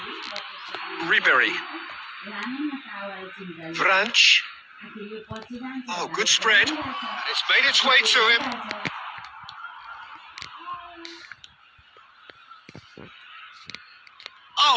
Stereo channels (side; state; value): both; identical; correlation 1.00